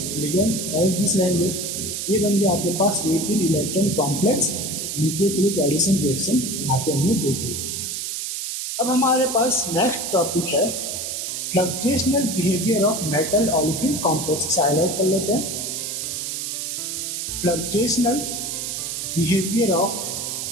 लिगेंड एज दिस रहेंगे। ये बन गया आपके पास 18 electron complex nucleophilic addition reaction, यहाँ पे हमने देख ली। अब हमारे पास नेक्स्ट टॉपिक है fluxional behaviour of metal olefin complex. इसे हाईलाइट कर लेते हैं। Fluxional behaviour of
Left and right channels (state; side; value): noise; right; hiss, 4 dB below the sound